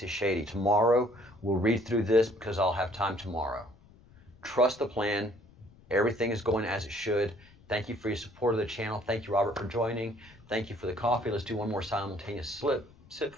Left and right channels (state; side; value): noise; left; rumble, 25 dB below the sound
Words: is shady. Tomorrow, we'll read through this because I'll have time tomorrow. Trust the plan. Everything is going as it should. Thank you for your support of the channel. Thank you, Robert, for joining. Thank you for the coffee. Let's do one more simultaneous sip